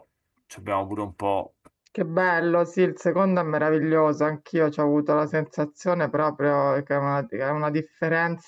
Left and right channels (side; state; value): both; identical; correlation 1.00